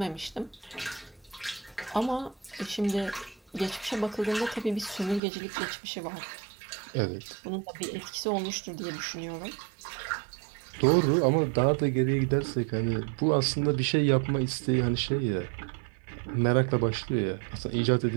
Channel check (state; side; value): drops out; left; at 5.2 s